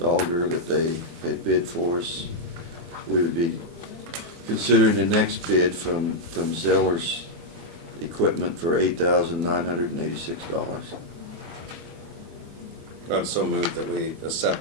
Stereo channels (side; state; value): left; late; 24 ms